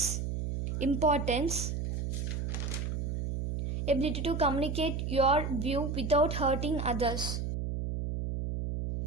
Importance. Ability to communicate your view without hurting others.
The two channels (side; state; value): right; noise; hum, 2 dB below the sound